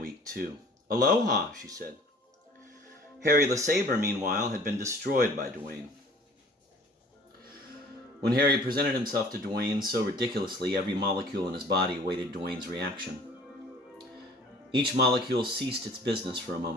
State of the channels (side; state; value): both; normal; correlation 0.50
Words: too. Aloha, she said. Harry LeSabre, meanwhile, had been destroyed by Dwayne. When Harry presented himself to Dwayne so ridiculously, every molecule in his body awaited Dwayne's reaction. Each molecule ceased its business for a